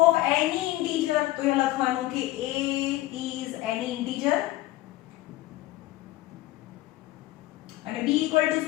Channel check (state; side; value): quieter; right; 16.9 dB